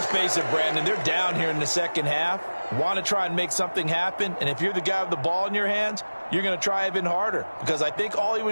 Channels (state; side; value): inverted; both; correlation -1.00